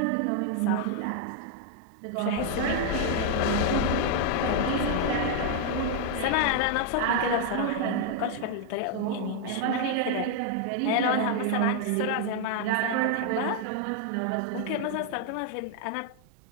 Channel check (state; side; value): different; both; correlation 0.00